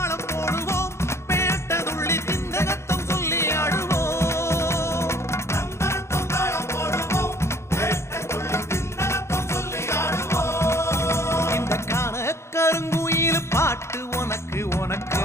போடுவோம் பேட்டதுள்ளி திந்தகத்தம் சொல்லி ஆடுவோம் தந்தரத்தம் தாளம் போடுவோம் பேட்டதுள்ளி திந்தகத்தம் சொல்லி ஆடுவோம் இந்த காண கருங்குயில் பாட்டு உனக்கு உனக்கு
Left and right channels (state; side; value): late; right; 0.13 ms